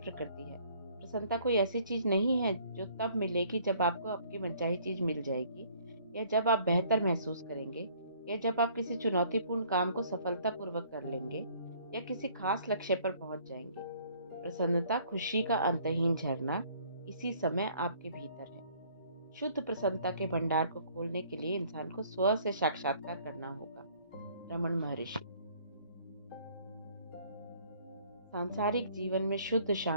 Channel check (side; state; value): both; inverted; correlation -0.58